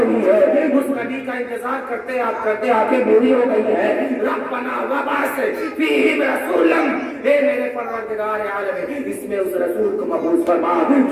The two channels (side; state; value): both; identical; correlation 1.00